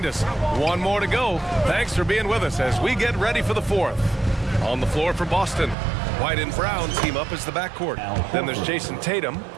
us. One more to go. Thanks for being with us as we get ready for the fourth. On the floor for Boston, White and Brown team up as the backcourt. Then there's Jason Tatum.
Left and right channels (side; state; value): left; drops out; at 5.8 s